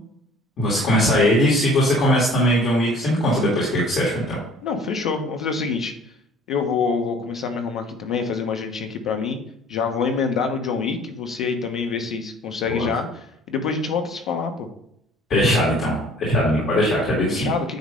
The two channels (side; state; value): both; normal; correlation 0.52